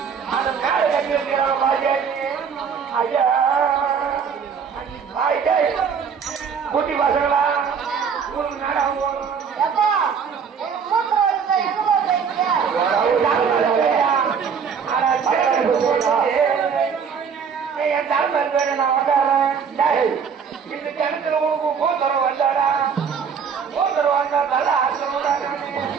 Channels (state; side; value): quieter; left; 6.6 dB